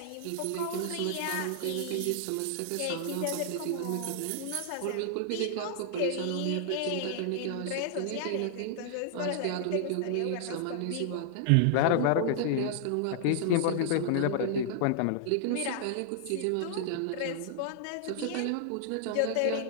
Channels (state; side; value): different; both; correlation -0.01